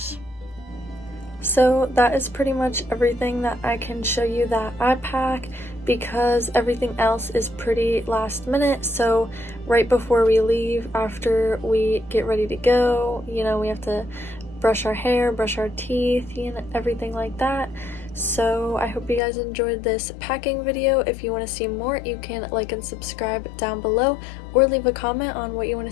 So that is pretty much everything that I can show you that I pack because everything else is pretty last minute. So right before we leave, after we get ready to go, you know, we have to brush our hair, brush our teeth, you know, everything like that. So I hope you guys enjoyed this packing video. If you want to see more, you can like and subscribe down below or leave a comment on what you want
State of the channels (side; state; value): right; drops out; at 19.2 s